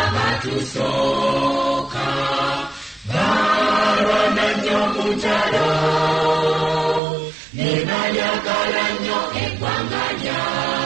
abatusooka balwana nnyo mu ntalo ne balyagala nnyo eggwanga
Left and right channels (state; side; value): drops out; left; at 7.0 s